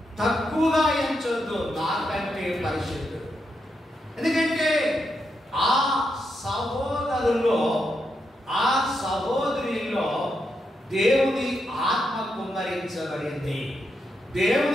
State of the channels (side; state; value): both; normal; correlation 0.83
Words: ఎంచొద్దు, నాకంటే పరిశుద్ధుడు. ఎందుకంటే ఆ సహోదరులో, ఆ సహోదరిలో దేవుని ఆత్మ కుమ్మరించబడింది.